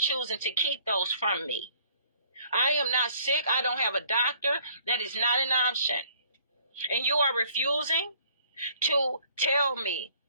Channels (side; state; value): both; inverted; correlation -0.58